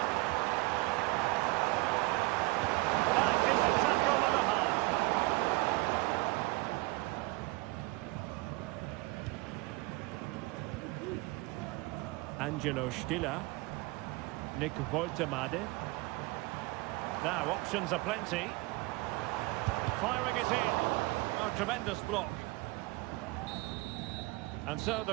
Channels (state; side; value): quieter; left; 22.9 dB